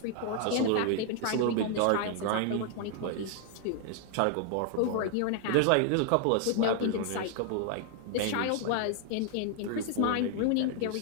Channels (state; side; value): different; both; correlation 0.00